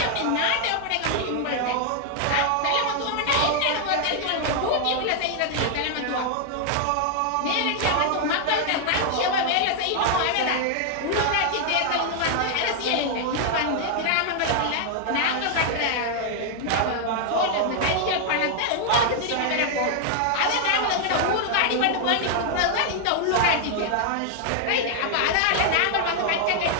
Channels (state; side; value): different; both; correlation 0.00